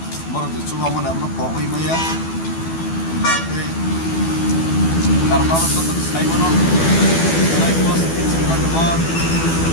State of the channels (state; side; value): late; right; 12 ms